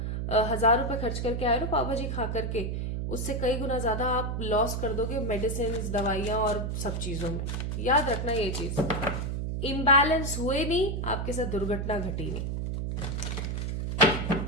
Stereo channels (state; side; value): noise; right; hum, 2 dB below the sound